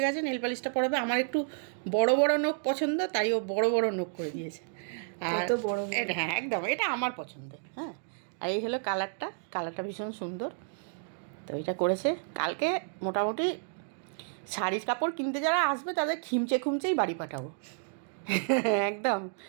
গেছে, নেল পালিশটা পরাবে। আমার একটু বড় বড় নখ পছন্দ, তাই ও বড় বড় নখ করে দিয়েছে। আর কত বড় বড়। এটা হ্যাঁ একদম, এটা আমার পছন্দ। হ্যাঁ, আর এই হলো কালারটা, কালারটা ভীষণ সুন্দর। তো এটা করেছে। কালকে মোটামুটি শাড়ির কাপড় কিনতে যারা আসবে তাদের খিমচে খুমচেই বাড়ি পাঠাবো। একদম।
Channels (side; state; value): left; silent; digital silence